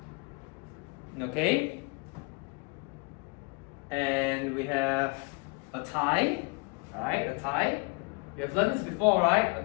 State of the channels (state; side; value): quieter; right; 30.6 dB